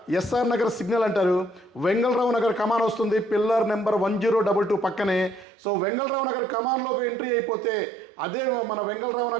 ఎస్ఆర్ నగర్ సిగ్నల్ అంటారు, వెంగళరావు నగర్ కమాన్ వస్తుంది, పిల్లర్ నెంబర్ 1022 పక్కనే. సో వెంగళరావు నగర్ కమాన్లోకి ఎంట్రీ అయిపోతే అదే మన వెంగళరావు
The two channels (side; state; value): left; drops out; at 5.5 s